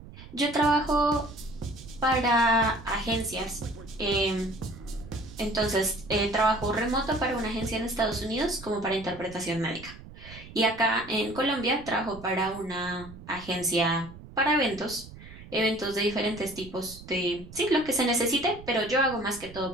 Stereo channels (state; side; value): noise; right; rumble, 17 dB below the sound